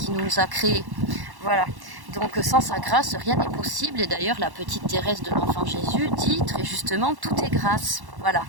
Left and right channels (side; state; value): left; late; 1.1 ms